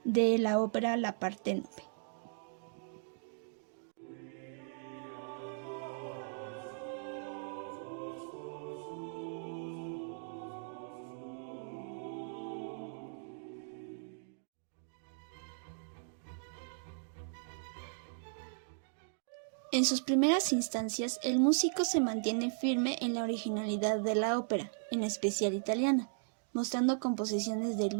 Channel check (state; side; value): silent; left; digital silence